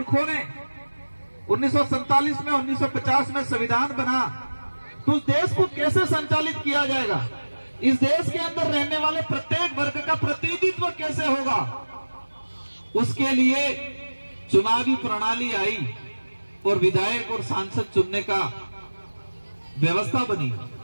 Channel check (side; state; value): both; inverted; correlation -1.00